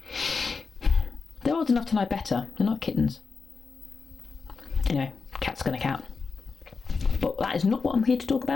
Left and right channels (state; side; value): quieter; right; 4.7 dB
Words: They're old enough to know better, they're not kittens. Anyway, cat's gonna cat. But that is not what I'm here to talk